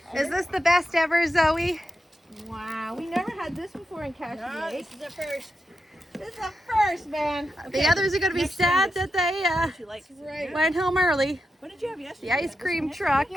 Is this the best ever, Zoe? Wow, we never had this before in Cottage. No, this is the first. This is the first, man. The others are going to be sad that they She likes it. Right. went home early. What did you have yesterday? The ice cream truck.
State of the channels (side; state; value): both; normal; correlation 0.87